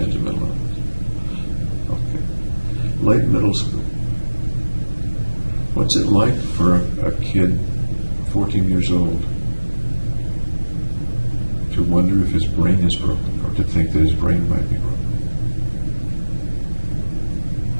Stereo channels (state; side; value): inverted; both; correlation -1.00